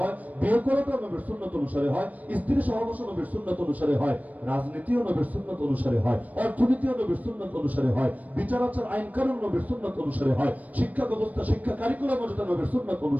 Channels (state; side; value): late; left; 0.074 ms